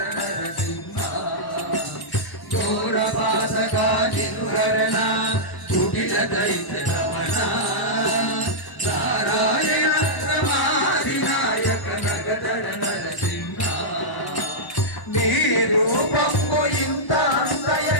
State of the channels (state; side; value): late; right; 1.0 ms